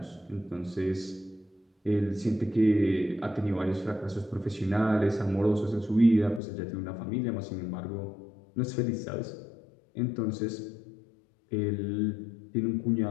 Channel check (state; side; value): drops out; right; at 6.4 s